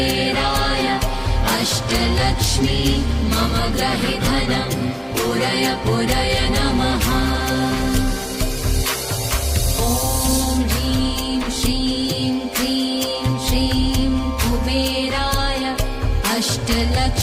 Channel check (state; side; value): identical; both; correlation 1.00